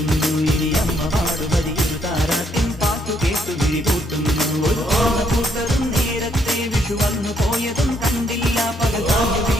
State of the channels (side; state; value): both; normal; correlation 0.71